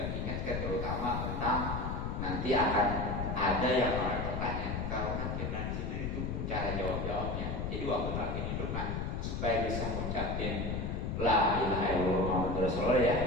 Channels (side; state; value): left; noise; rumble, 2 dB below the sound